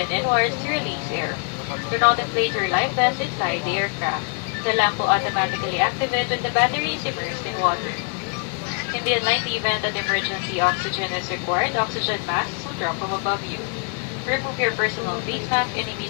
inwards to release air. Do not inflate your life vest inside the aircraft. The lamp will automatically activate when the battery is immersed in water. In the unlikely event that emergency oxygen is required, oxygen masks will drop from above you. Remove your personal face mask and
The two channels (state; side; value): quieter; right; 38.2 dB